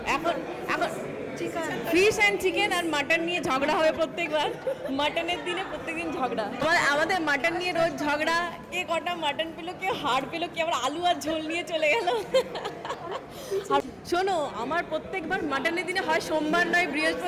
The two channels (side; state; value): both; identical; correlation 1.00